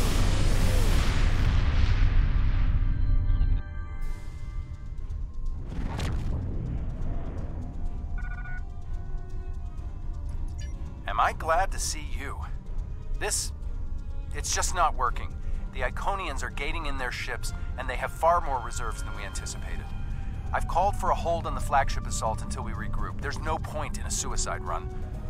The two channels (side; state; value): both; identical; correlation 1.00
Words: Am I glad to see you? It's just not working. The Iconians are gating in their ships, and they have far more reserves than we anticipated. I've called for a hold on the flagship assault until we regroup. There's no point in a suicide run.